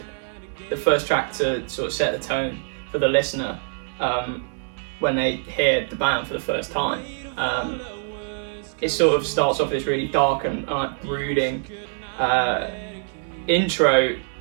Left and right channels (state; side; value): silent; left; digital silence